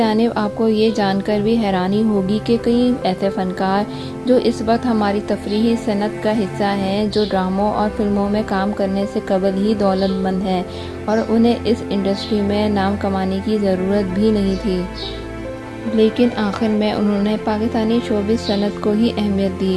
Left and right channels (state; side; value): identical; both; correlation 1.00